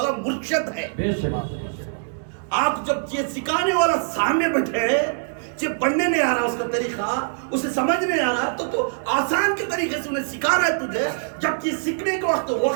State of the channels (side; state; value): left; silent; digital silence